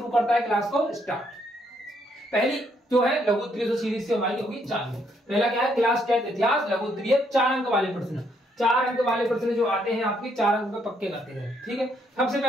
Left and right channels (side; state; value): both; normal; correlation 0.72